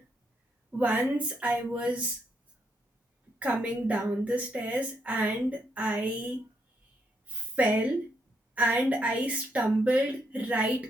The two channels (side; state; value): both; normal; correlation 0.76